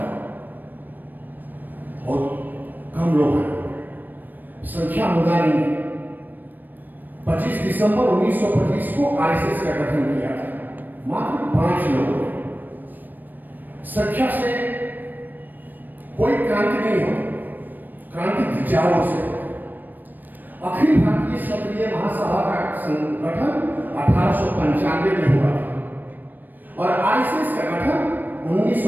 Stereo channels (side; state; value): left; late; 0.089 ms